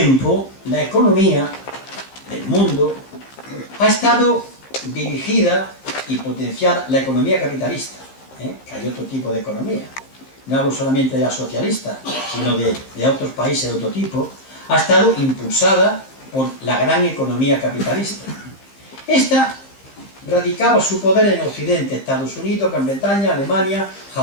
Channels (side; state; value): right; late; 15 ms